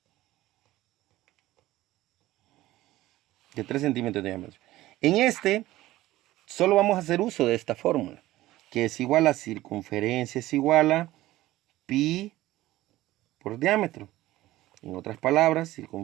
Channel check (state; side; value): quieter; left; 16.4 dB